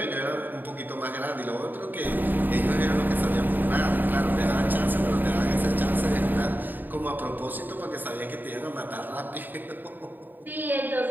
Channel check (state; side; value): late; left; 0.090 ms